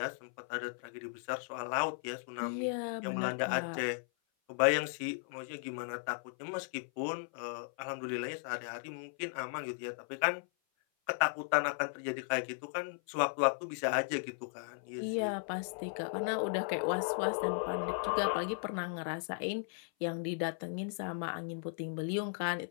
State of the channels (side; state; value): right; silent; 54 dB below the other